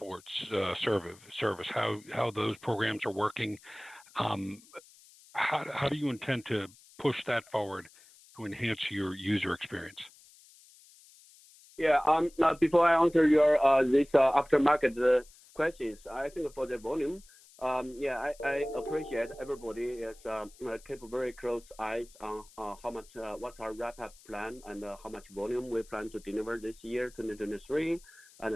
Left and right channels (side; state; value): left; noise; hiss, 25 dB below the sound